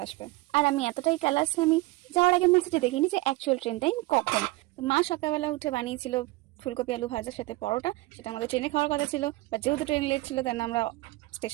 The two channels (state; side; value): quieter; left; 21.1 dB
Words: আসবে। আর আমি এতটাই ক্যালাস, আমি যাওয়ার আগে মেসেজে দেখিনি যে অ্যাকচুয়াল ট্রেন টাইম কখন। তো মা সকালবেলা উঠে বানিয়েছিল ফুলকপি আলু ভাজার সাথে পরোটা, সেটা আমাদের ট্রেনে খাওয়ার কথা ছিল, বাট যেহেতু ট্রেন লেট ছিল তাই আমরা